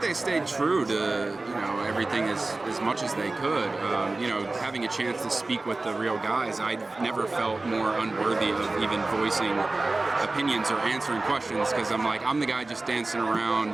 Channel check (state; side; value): quieter; left; 3.2 dB